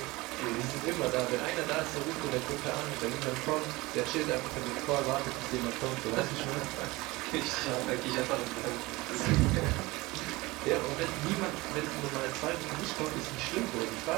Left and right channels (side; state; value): left; quieter; 21.6 dB